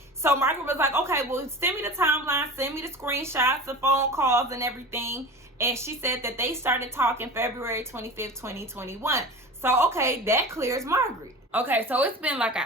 So Margaret was like, okay, well, send me the timeline, send me the screenshots, the phone calls, and everything. And she said that they started talking February 25th, 2021. So, okay, that clears Margaret. Okay, so it's been like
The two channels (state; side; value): normal; both; correlation 0.33